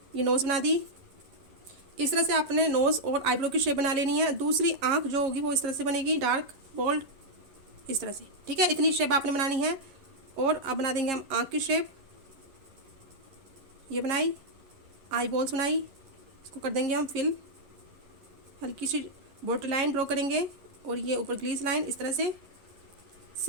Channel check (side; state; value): left; late; 11 ms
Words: ये नोज़ बना दी। इस तरह से आपने नोज़ और आईब्रो की शेप बना लेनी है। दूसरी आंख जो होगी वो इस तरह से बनेगी, डार्क बोल्ड इस तरह से, ठीक है। इतनी शेप आपने बनानी है। और अब बना देंगे हम आंख की शेप, ये बनाई, आई बॉल्स बनाई, इसको कर देंगे हम फिल, हल्की सी बॉर्डर लाइन ड्रॉ करेंगे और ये ऊपर ग्लीस लाइन इस तरह से।